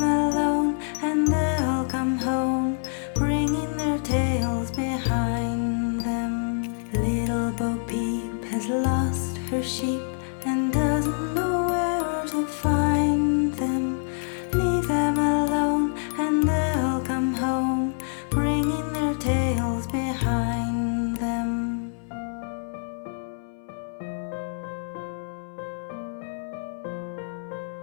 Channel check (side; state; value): right; silent; 61 dB below the other